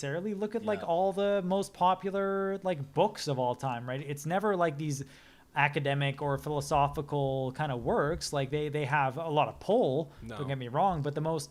Look at like all the most popular like books of all time, right? It's never like these academic or philosophical kind of works. Like they have a lot of pull. No. Don't get me wrong, but the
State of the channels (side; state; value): both; identical; correlation 1.00